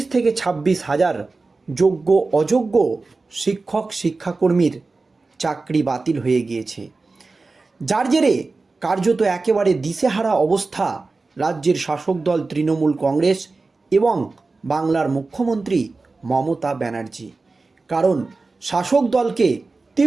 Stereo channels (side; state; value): left; quieter; 3.7 dB